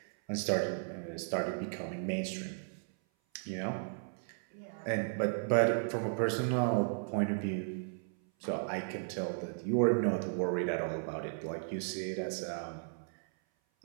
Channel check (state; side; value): silent; left; 54 dB below the other